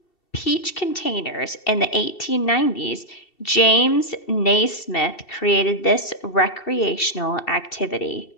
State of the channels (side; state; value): right; late; 2.7 ms